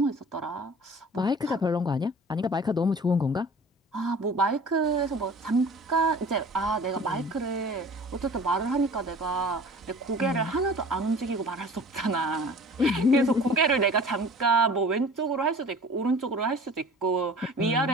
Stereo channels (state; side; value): normal; both; correlation 0.44